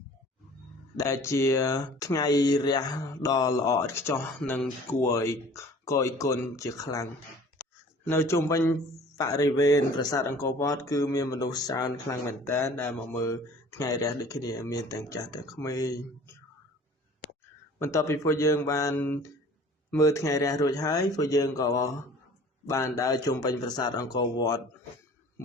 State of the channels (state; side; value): normal; both; correlation 0.48